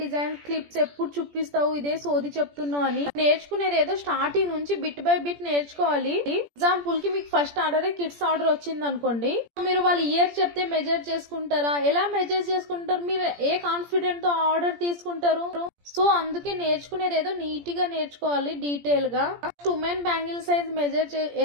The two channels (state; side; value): late; left; 17 ms